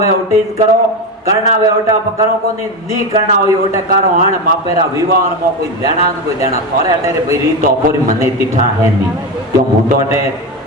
ओटीज करो करना वे ओटा करो को नहीं करना होई ओटे करो हण मापेरा विवाह में कोई देना थोरे अटेरे भाई री तो अपोरी मने तिठा है नहीं क्यों मु तो अटे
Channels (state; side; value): normal; both; correlation 0.17